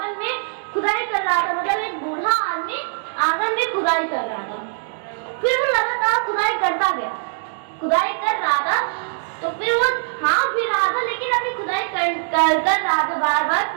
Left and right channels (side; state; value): left; silent; digital silence